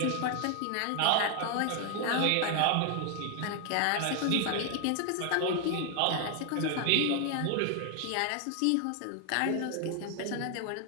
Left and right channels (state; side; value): different; both; correlation 0.00